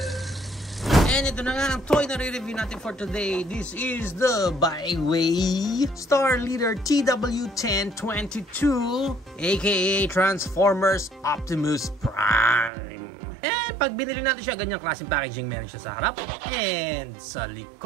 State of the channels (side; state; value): left; drops out; at 12.7 s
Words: And ito na nga ang toy na re-review natin for today. This is the Byway Star Leader TW1022, aka Transformers Optimus Prime. Pag binili natin siya, ganyang klaseng packaging meron siya sa harap, and sa